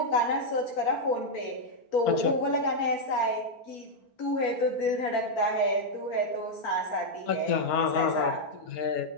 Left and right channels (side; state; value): right; late; 4.4 ms